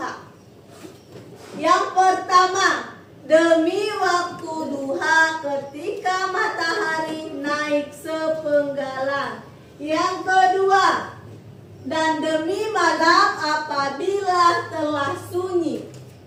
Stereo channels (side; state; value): both; identical; correlation 1.00